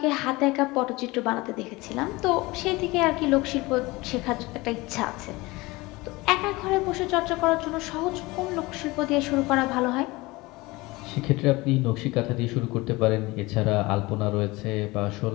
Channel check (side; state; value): right; quieter; 22.0 dB